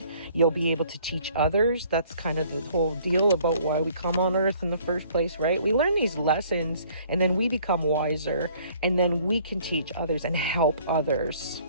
you'll be able to teach others. That's kind of the whole deal about why we come on earth in the first place, right? We learn these lessons and then we become wiser and then we can teach others and help others,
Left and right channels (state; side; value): inverted; both; correlation -0.58